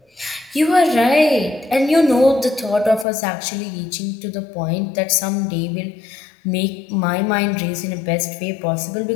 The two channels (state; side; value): drops out; right; at 3.1 s